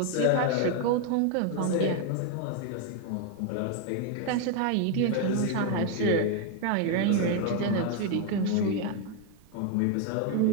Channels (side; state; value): both; different; correlation 0.01